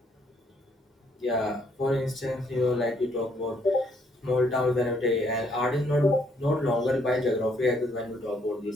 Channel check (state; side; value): normal; both; correlation 0.69